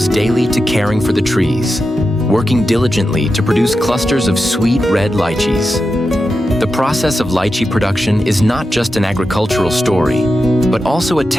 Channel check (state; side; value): normal; both; correlation 0.90